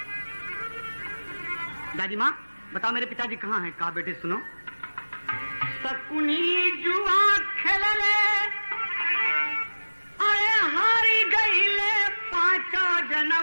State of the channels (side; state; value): both; inverted; correlation -1.00